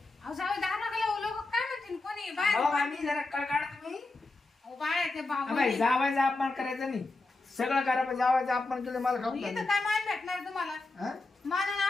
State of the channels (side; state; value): right; quieter; 3.3 dB